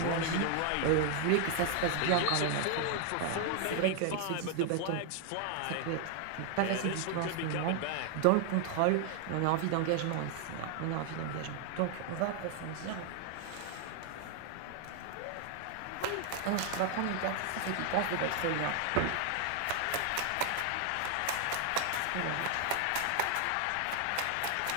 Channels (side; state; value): both; different; correlation 0.00